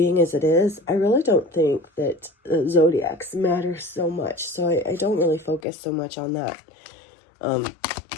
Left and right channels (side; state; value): right; drops out; at 5.6 s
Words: as it is, I really don't think that zodiacs matter so much. So I don't really focus so much on that.